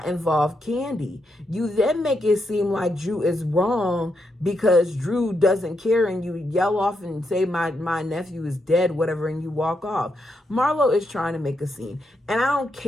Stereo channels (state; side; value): normal; both; correlation 0.81